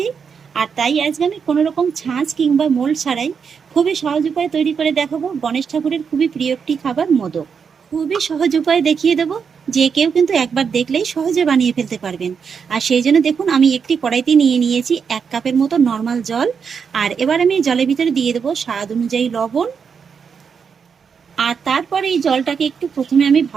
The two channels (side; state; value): left; quieter; 6.3 dB